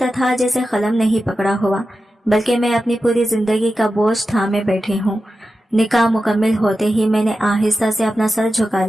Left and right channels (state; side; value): normal; both; correlation 0.92